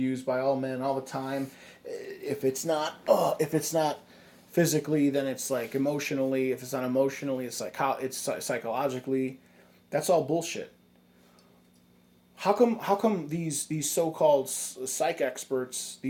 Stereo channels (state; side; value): identical; both; correlation 1.00